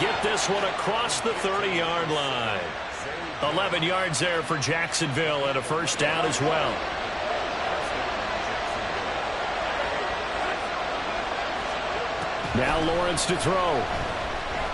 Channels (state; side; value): noise; left; hum, 24 dB below the sound